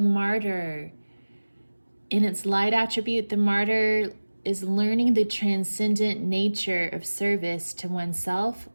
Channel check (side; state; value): both; inverted; correlation -1.00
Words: Martyr. In its light attribute, the Martyr is learning the transcendent nature of service to oneself